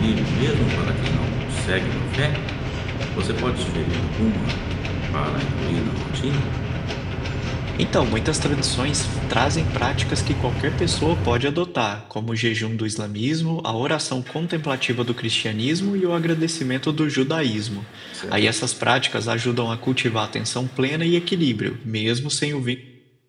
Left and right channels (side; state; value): both; identical; correlation 1.00